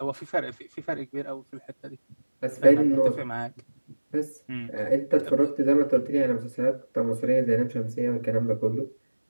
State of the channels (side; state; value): both; inverted; correlation -1.00